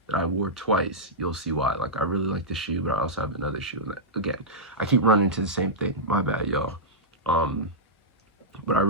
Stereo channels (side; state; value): both; normal; correlation -0.11